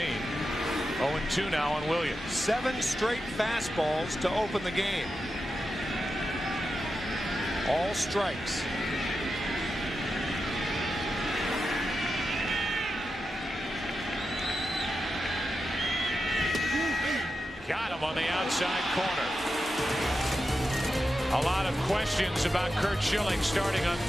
0-2 now on Williams. 7 straight fastballs to open the game. All strikes. Got him on the outside corner. A lot of questions about Curt Schilling starting on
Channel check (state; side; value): normal; both; correlation 0.89